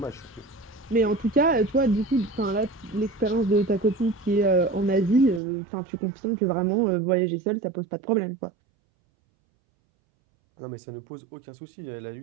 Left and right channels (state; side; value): drops out; left; at 5.4 s